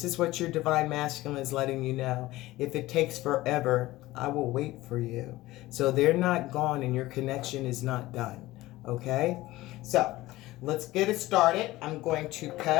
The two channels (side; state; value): right; quieter; 17.8 dB